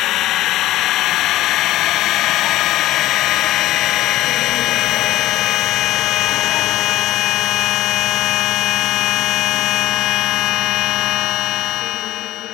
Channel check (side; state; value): right; quieter; 15.3 dB